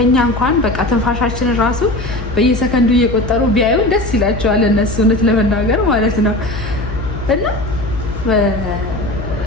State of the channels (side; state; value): left; noise; hum, 8 dB below the sound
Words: እንኳን በቃ ትንፋሻችንን ራሱ በየሰከንዱ እየቆጠሩ ቢያዩ ደስ ይላቸዋል እነሱ እውነት ለመናገር ማለት ነው። እና